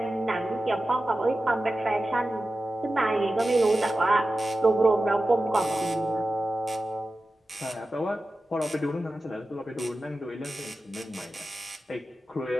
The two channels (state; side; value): normal; both; correlation 0.94